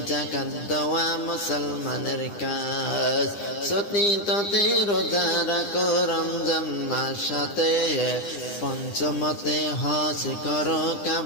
যাকাত দেওয়া মুসলমানের কাজ। চতুর্থতে রোজা রাখো রমজান মাসেতে, পঞ্চমতে হজ করো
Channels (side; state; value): right; late; 9.9 ms